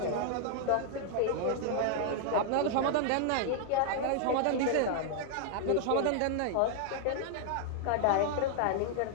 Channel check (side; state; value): both; different; correlation 0.00